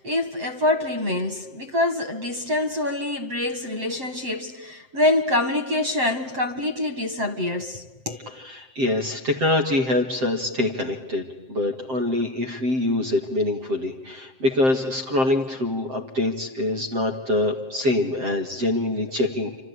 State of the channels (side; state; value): left; late; 7.7 ms